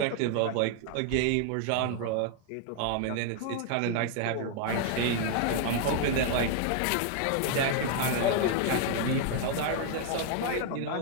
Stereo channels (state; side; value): different; both; correlation 0.00